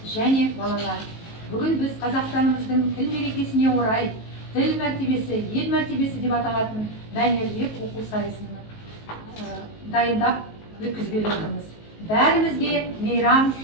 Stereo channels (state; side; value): late; right; 19 ms